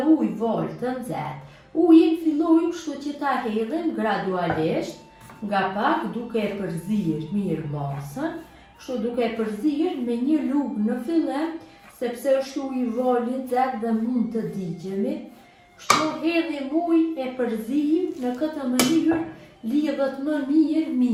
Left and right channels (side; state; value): both; identical; correlation 1.00